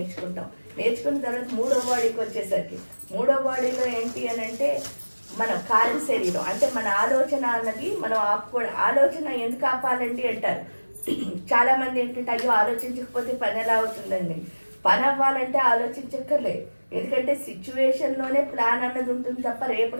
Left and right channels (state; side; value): inverted; both; correlation -1.00